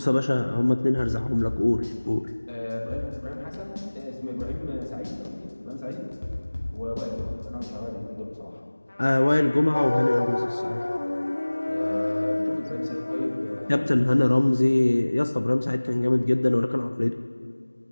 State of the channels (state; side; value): inverted; both; correlation -1.00